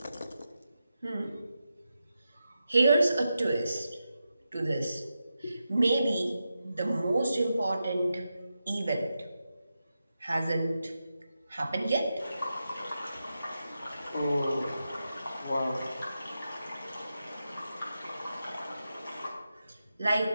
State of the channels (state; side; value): inverted; both; correlation -0.89